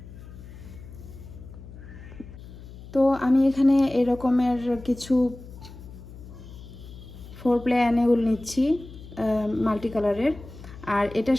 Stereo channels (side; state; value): left; noise; hum, 16 dB below the sound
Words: তো আমি এখানে এরকমের কিছু 4 প্লে অ্যানেউল নিচ্ছি মাল্টি কালারের, আর এটার